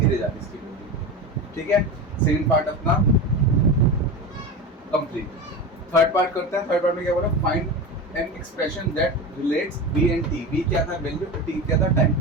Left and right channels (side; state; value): both; normal; correlation 0.25